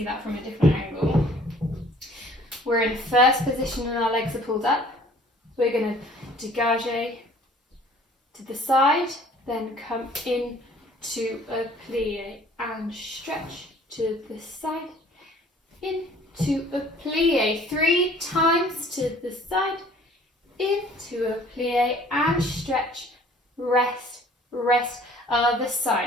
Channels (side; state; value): both; normal; correlation 0.54